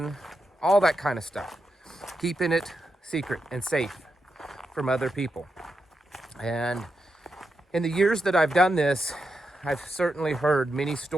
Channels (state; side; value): normal; both; correlation 0.86